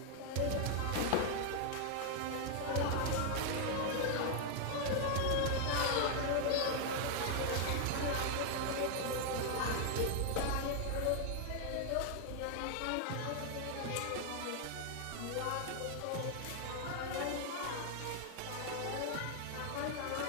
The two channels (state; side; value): different; both; correlation 0.00